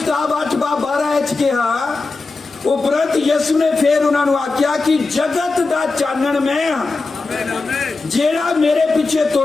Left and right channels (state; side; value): quieter; right; 3.8 dB